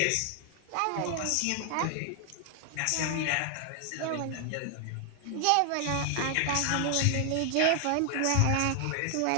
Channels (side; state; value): both; different; correlation 0.00